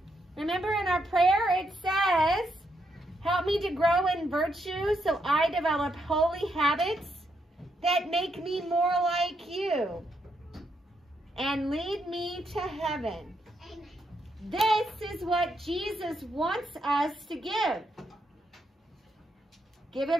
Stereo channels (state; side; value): normal; both; correlation 0.79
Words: Remember in our prayer it says, "Help me to grow in virtue so I develop holy habits that make me more like you, and lead me to heaven." This is what Jesus wants us to give. Give